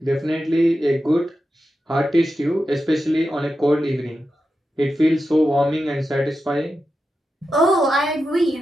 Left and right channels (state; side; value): normal; both; correlation 0.90